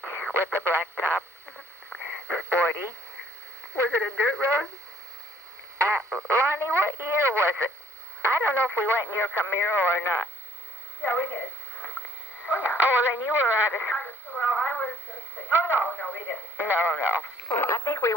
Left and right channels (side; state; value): both; normal; correlation 0.61